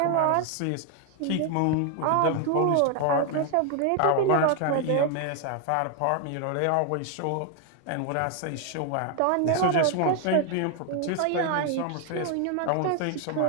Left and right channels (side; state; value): both; different; correlation 0.01